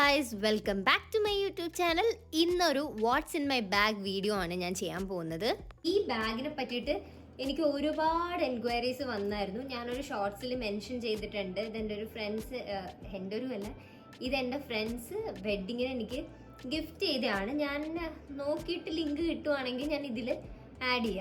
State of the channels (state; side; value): identical; both; correlation 1.00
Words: welcome back to my YouTube channel. ഇന്നൊരു what's in my bag video ആണ് ഞാൻ ചെയ്യാൻ പോകുന്നത്. ഈ ബാഗിനെ പറ്റിയിട്ട് എനിക്ക് ഒരുപാട് എൻക്വയറീസ് വന്നായിരുന്നു. ഞാനൊരു ഷോർട്സിൽ മെൻഷൻ ചെയ്തിട്ടുണ്ട്. ഇതെൻ്റെ ഒരു ഫ്രണ്ട്സ്, എൻ്റെ ഒരു അല്ല, ഇതെൻ്റെ ഫ്രണ്ട്സ് വെഡ്ഡിങ്ങിന് എനിക്ക് ഗിഫ്റ്റ് ചെയ്തതാണ്. ഞാൻ നോക്കിയിട്ട് ലിങ്ക് കിട്ടുവാണെങ്കിൽ ഞാൻ ഇതിൽ ആഡ്